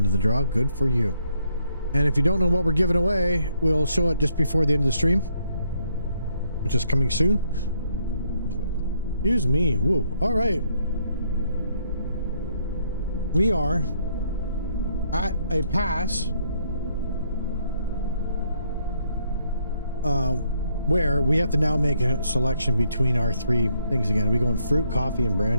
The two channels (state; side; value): inverted; both; correlation -0.72